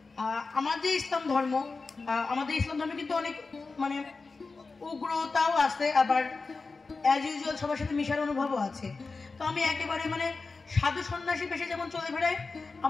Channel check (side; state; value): right; quieter; 4.1 dB